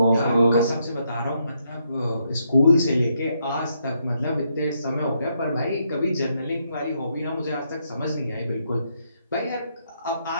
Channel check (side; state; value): both; inverted; correlation -0.76